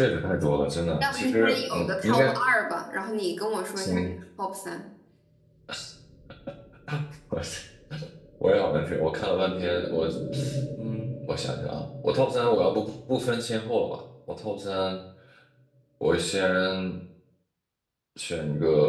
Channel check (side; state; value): both; identical; correlation 1.00